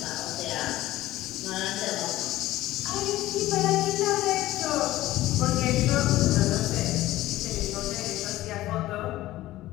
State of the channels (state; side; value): quieter; right; 16.1 dB